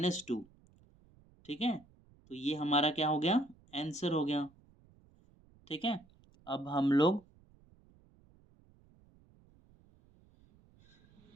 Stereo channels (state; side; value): noise; right; rumble, 29 dB below the sound